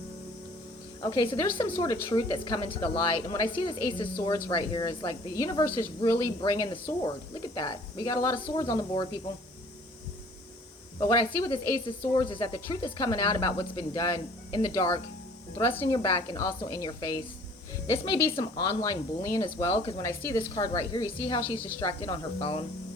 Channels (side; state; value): both; normal; correlation 0.53